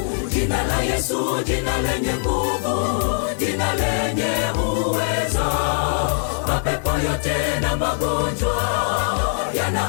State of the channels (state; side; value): silent; right; 65 dB below the other